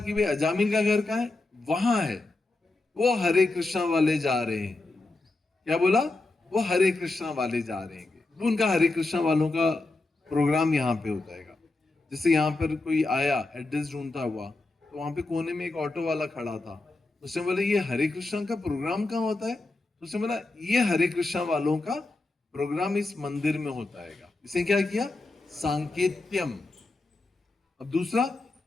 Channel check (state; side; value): quieter; right; 3.2 dB